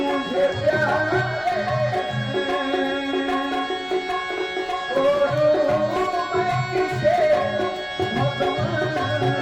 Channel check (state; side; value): noise; left; rumble, 26 dB below the sound